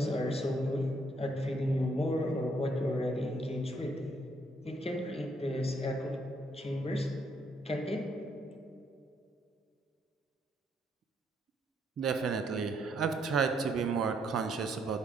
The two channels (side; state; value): both; normal; correlation 0.72